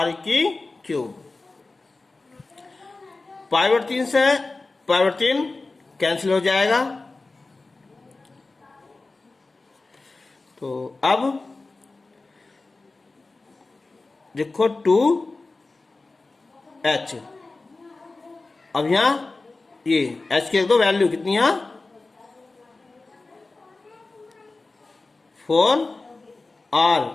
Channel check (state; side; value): quieter; right; 3.4 dB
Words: की क्यूब। π/3 से π/3 कैंसिल हो जाएगा। तो अब देखो 2H, अब यहां ये H की दो वैल्यू कितनी है,